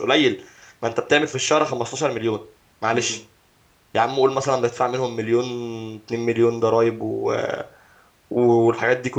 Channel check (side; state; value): both; identical; correlation 1.00